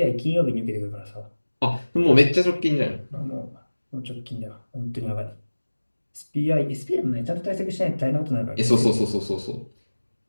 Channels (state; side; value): inverted; both; correlation -1.00